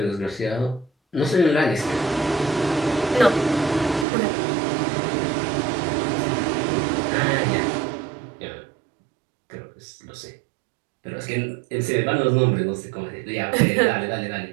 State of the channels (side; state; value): left; drops out; at 4.0 s